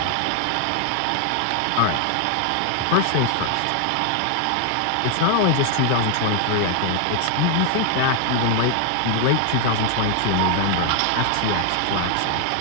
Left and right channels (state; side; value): different; both; correlation 0.00